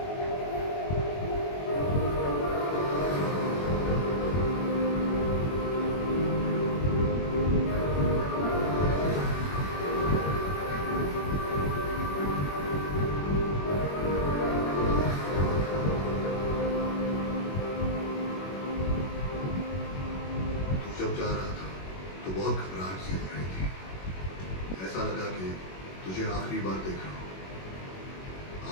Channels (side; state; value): right; late; 21 ms